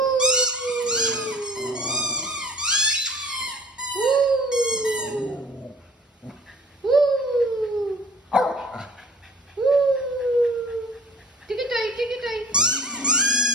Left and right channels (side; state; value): both; normal; correlation 0.47